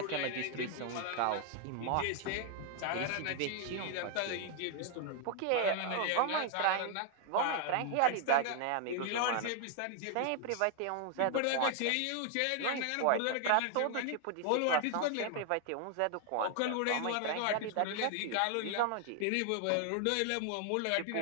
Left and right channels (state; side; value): different; both; correlation 0.00